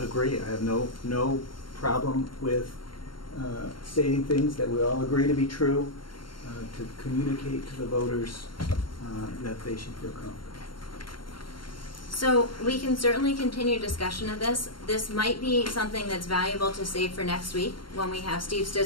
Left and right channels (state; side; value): late; right; 0.73 ms